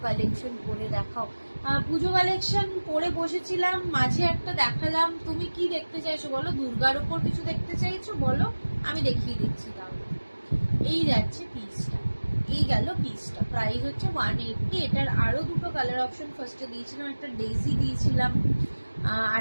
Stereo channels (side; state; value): both; inverted; correlation -1.00